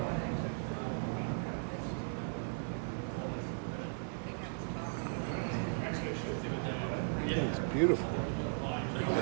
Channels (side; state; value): left; silent; 53 dB below the other